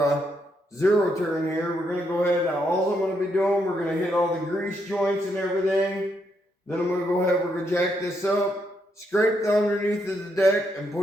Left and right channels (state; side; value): normal; both; correlation 0.78